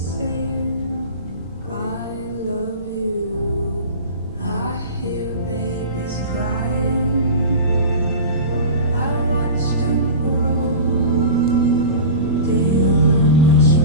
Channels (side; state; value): both; inverted; correlation -0.32